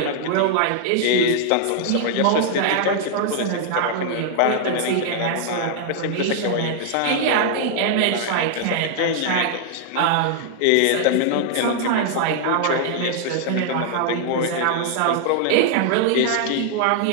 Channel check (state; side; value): different; both; correlation -0.01